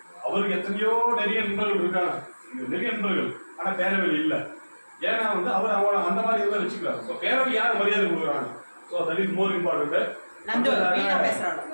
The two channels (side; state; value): both; inverted; correlation -1.00